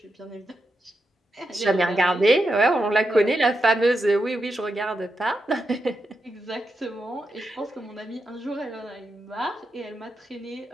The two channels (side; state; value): both; normal; correlation 0.86